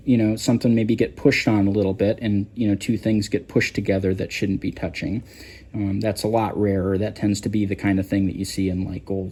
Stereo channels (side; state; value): both; identical; correlation 1.00